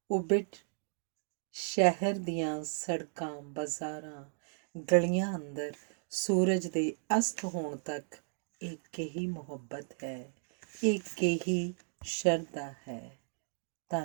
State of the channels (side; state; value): left; silent; digital silence